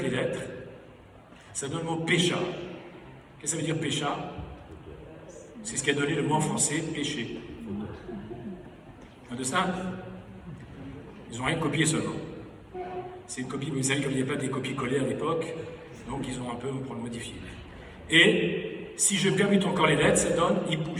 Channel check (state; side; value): identical; both; correlation 1.00